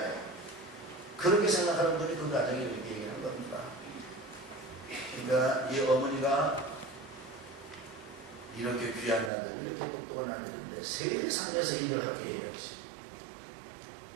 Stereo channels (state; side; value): drops out; left; at 9.3 s